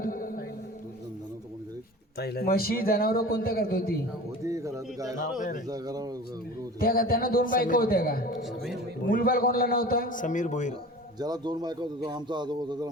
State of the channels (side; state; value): both; normal; correlation 0.39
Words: म्हशी जनावर कोणत्या करत होती? त्या का? त्यांना दोन बायका होत्या का? मुलबाळ कोणाला नव्हता? समीर भोईर. ज्याला दोन बायका होत्या आमचा आजोबा होता, त्याला